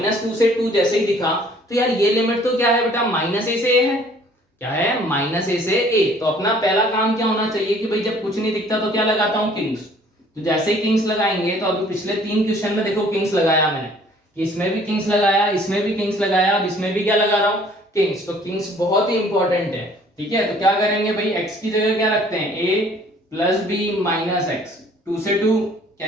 से 2 जैसे ही दिखा तो यार ये लिमिट तो क्या है बेटा, -a से a है, क्या है -a से a। तो अपना पहला काम क्या होना चाहिए कि भाई जब कुछ नहीं दिखता तो क्या लगाता हूं, किंग्स। तो जैसे ही किंग्स लगाएंगे, तो अभी पिछले 3 क्वेश्चन में देखो किंग्स लगाया मैंने, इसमें भी किंग्स लगाया, इसमें भी किंग्स लगाया, अब इसमें भी क्या लगा रहा हूं, किंग्स। तो किंग्स बहुत ही इंपॉर्टेंट है। ठीक है, तो क्या करेंगे भाई, x की जगह क्या रखते हैं, a plus b minus x, 2 से 2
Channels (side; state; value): both; normal; correlation 0.56